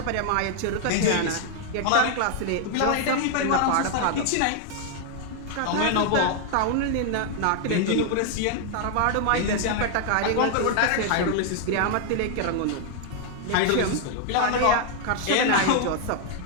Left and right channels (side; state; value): both; different; correlation 0.00